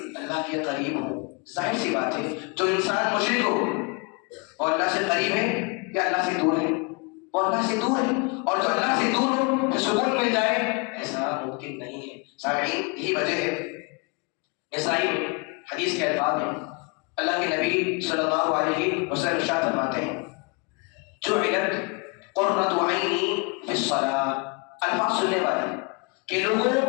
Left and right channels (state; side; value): quieter; right; 32.0 dB